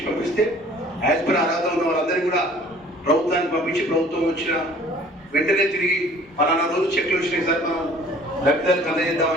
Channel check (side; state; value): both; normal; correlation 0.51